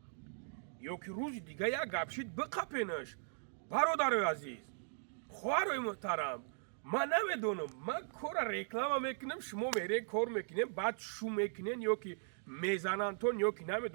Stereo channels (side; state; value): left; silent; digital silence